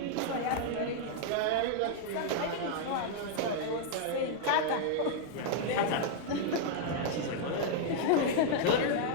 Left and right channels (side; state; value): both; different; correlation -0.01